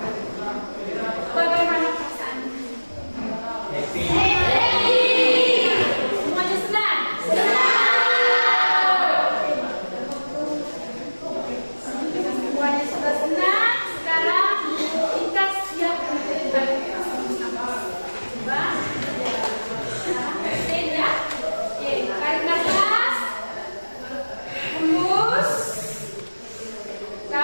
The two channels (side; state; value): both; inverted; correlation -1.00